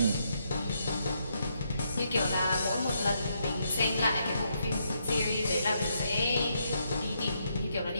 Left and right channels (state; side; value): inverted; both; correlation -0.77